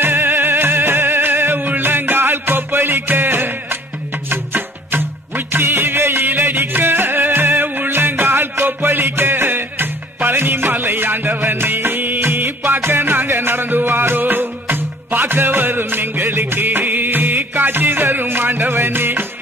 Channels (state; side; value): normal; both; correlation 0.53